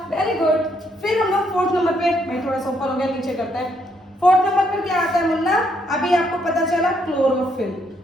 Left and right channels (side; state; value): both; normal; correlation 0.73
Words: Very good. फिर हम लोग 4th नंबर पे, मैं थोड़ा सा ऊपर हो गया, नीचे करता है। 4th नंबर पर क्या आता है मुन्ना? अभी आपको पता चला क्लोरोफिल।